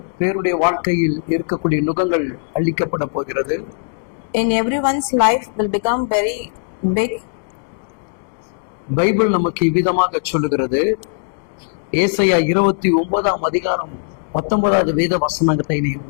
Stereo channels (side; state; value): right; silent; digital silence